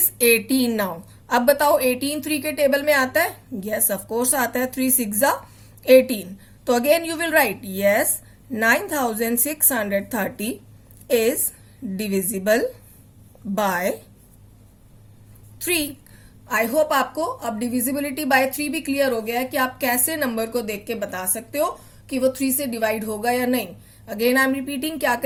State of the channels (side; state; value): both; identical; correlation 1.00